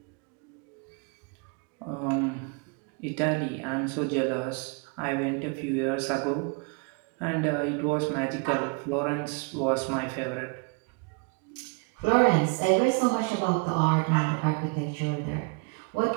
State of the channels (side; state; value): left; quieter; 33.6 dB